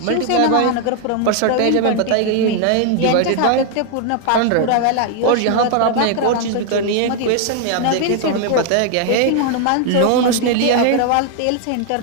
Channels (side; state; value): both; different; correlation 0.00